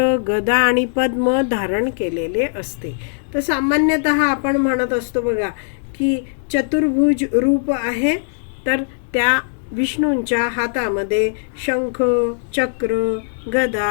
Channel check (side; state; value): right; silent; digital silence